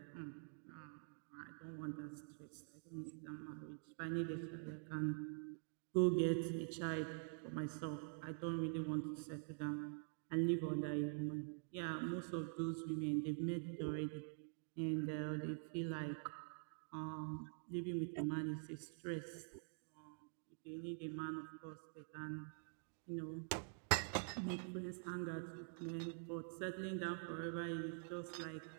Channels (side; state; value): left; silent; digital silence